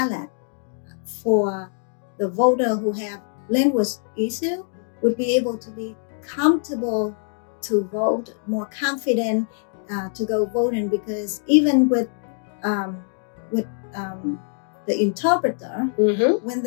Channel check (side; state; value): right; silent; 60 dB below the other